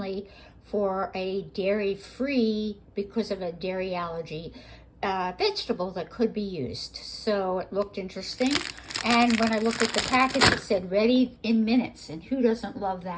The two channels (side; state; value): both; identical; correlation 1.00